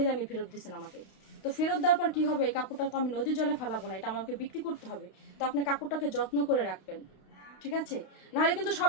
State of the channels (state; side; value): late; right; 32 ms